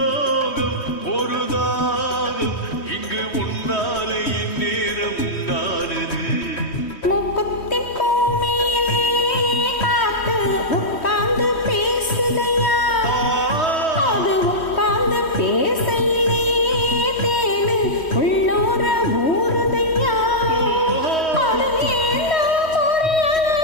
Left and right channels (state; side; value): late; right; 3.1 ms